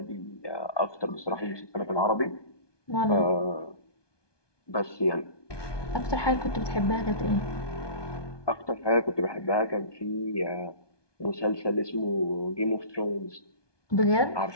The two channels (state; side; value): late; right; 1.2 ms